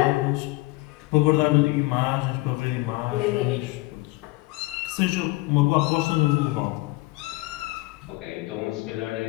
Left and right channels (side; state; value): right; quieter; 22.1 dB